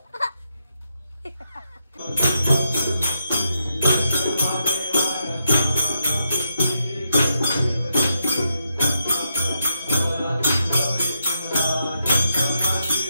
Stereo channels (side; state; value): both; inverted; correlation -0.82